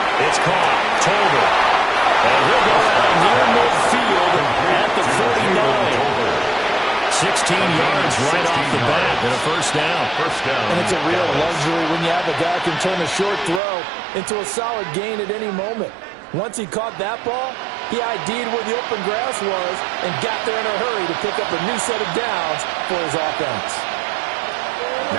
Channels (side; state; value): left; drops out; at 13.6 s